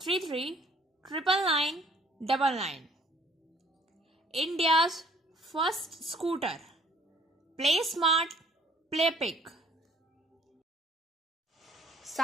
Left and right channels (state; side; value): normal; both; correlation 0.60